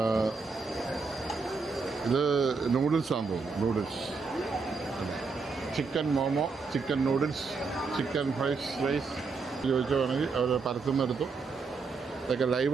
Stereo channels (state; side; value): quieter; left; 4.5 dB